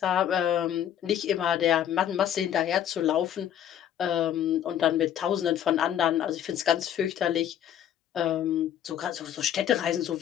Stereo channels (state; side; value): quieter; right; 10.1 dB